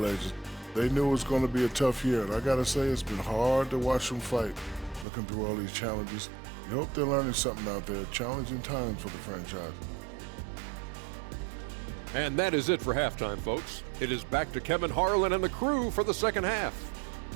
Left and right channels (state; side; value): drops out; left; at 5.1 s